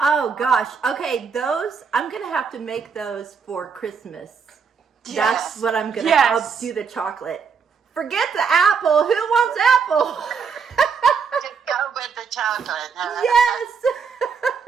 gosh. Okay, those, I'm going to have to make those for Christmas. Yes. That's what I'm going to, Yes. I'll do the chocolate. Forget the apple. Who wants apple? Just go with the chocolate. Huh?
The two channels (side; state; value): left; quieter; 5.9 dB